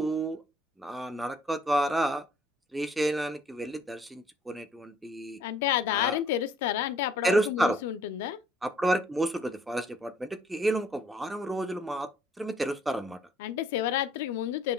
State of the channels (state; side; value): normal; both; correlation 0.59